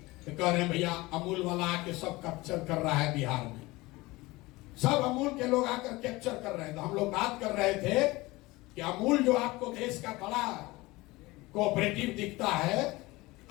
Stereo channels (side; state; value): right; quieter; 21.1 dB